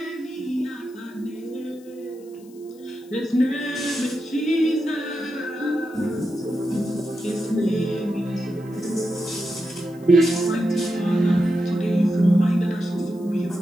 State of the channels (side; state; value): left; noise; hiss, 28 dB below the sound